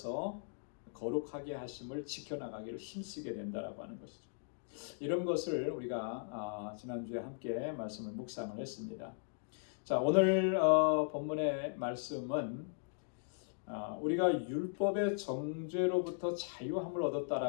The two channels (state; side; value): silent; right; digital silence